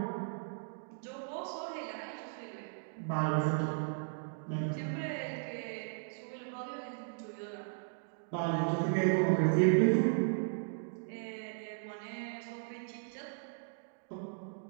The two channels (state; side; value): silent; left; digital silence